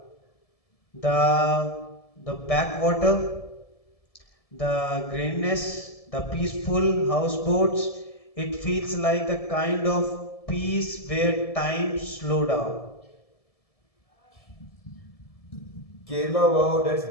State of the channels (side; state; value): right; late; 1.7 ms